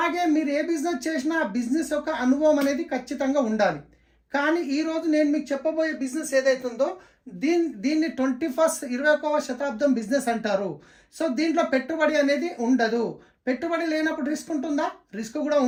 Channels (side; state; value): both; identical; correlation 1.00